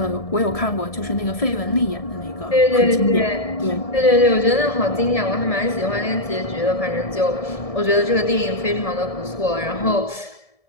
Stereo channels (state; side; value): late; right; 1.7 ms